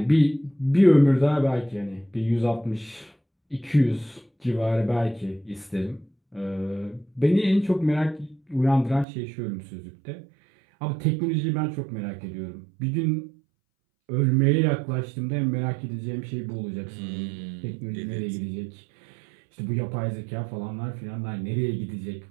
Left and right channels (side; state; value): left; drops out; at 9.1 s